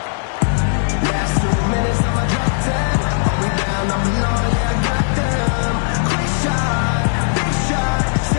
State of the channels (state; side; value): silent; right; digital silence